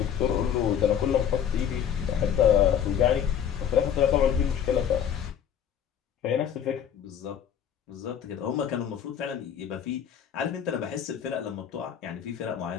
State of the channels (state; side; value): quieter; right; 8.8 dB